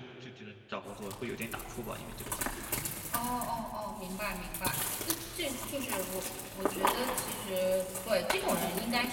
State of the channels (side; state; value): both; identical; correlation 1.00